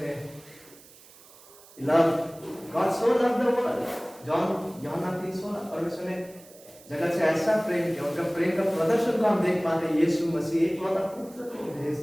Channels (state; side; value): noise; right; hiss, 23 dB below the sound